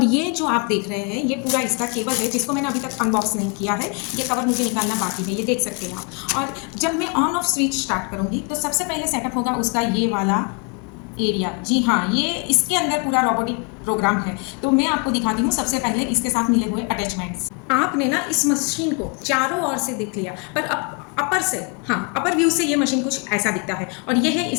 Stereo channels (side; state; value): right; quieter; 33.9 dB